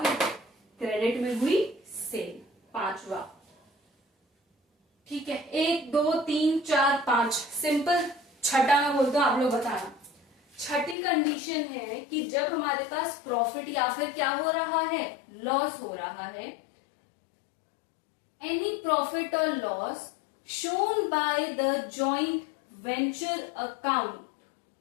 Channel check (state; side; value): drops out; right; at 11.0 s